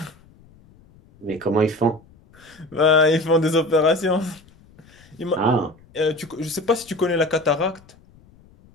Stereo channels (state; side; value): noise; left; rumble, 28 dB below the sound